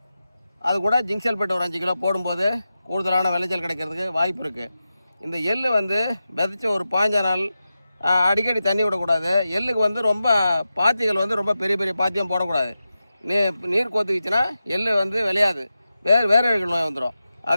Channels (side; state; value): both; inverted; correlation -0.92